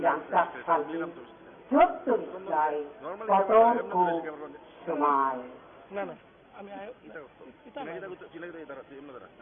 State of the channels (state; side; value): identical; both; correlation 1.00